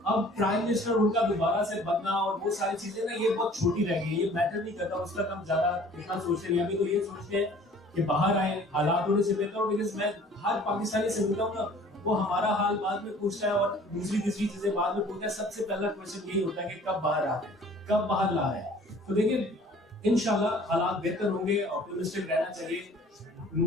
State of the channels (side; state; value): both; normal; correlation 0.51